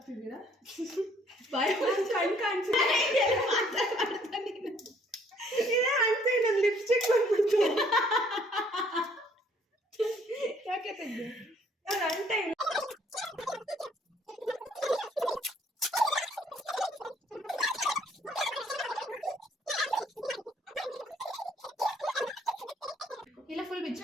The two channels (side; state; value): both; normal; correlation 0.63